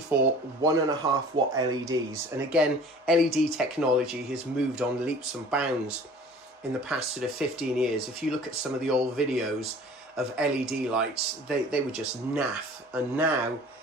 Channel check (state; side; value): normal; both; correlation 0.46